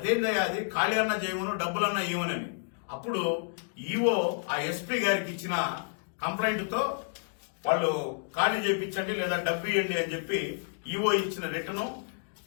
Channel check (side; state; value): right; silent; digital silence